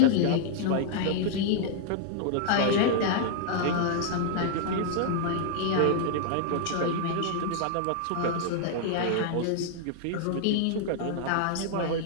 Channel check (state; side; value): different; both; correlation -0.01